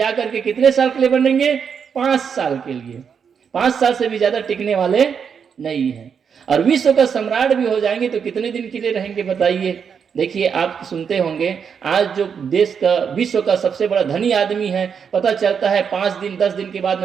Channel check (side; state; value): left; quieter; 6.9 dB